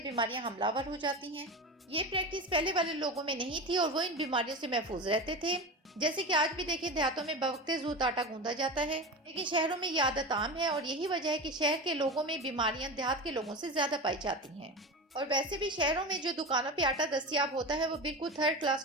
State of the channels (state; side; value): normal; both; correlation 0.25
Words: حملہ آور ہو جاتی ہیں۔ یہ پریکٹس پہلے والے لوگوں میں نہیں تھی اور وہ ان بیماریوں سے محفوظ رہتے تھے، جیسے کہ آج بھی دیکھیں دیہاتوں میں بوقت زود آٹا گوندھا جاتا ہے، لیکن شہروں میں یہ عادت عام ہے، اور یہی وجہ ہے کہ شہر کے لوگوں میں بیماریاں دیہات کے لوگوں سے زیادہ پائی جاتی ہیں۔ اور ویسے بھی شہروں میں جو دکانوں پہ آٹا دستیاب ہوتا ہے وہ بالکل تھرڈ کلاس